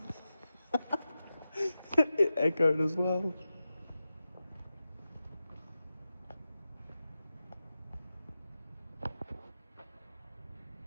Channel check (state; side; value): inverted; both; correlation -0.93